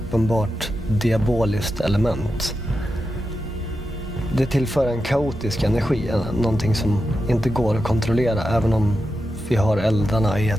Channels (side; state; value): both; normal; correlation 0.89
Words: diaboliskt element. Det tillför en kaotisk energi, någonting som inte går att kontrollera, även om vi har eldarna i